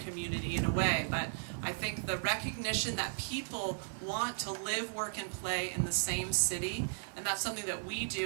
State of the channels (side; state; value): left; silent; 54 dB below the other